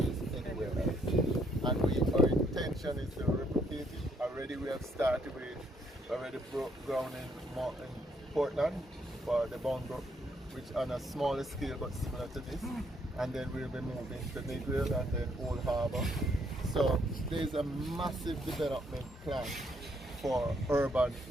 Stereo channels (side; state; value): both; normal; correlation 0.70